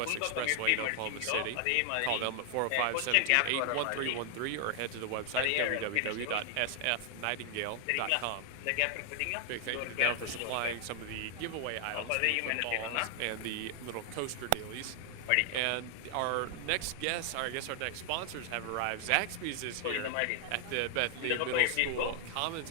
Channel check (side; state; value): both; different; correlation 0.00